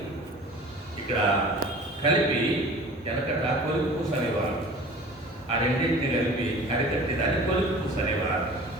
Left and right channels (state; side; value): normal; both; correlation 0.43